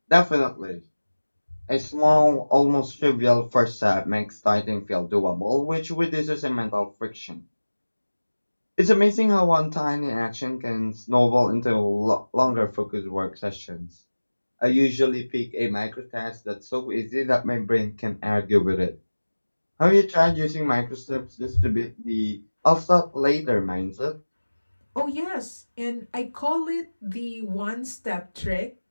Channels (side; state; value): both; inverted; correlation -1.00